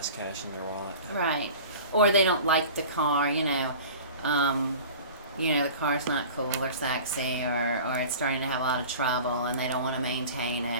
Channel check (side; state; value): both; inverted; correlation -0.40